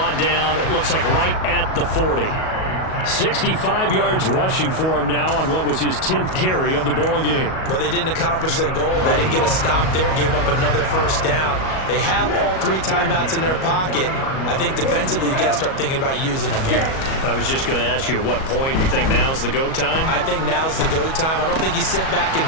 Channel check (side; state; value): right; late; 37 ms